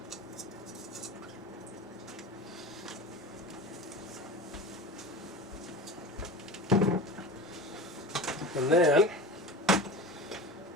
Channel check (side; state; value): both; normal; correlation 0.31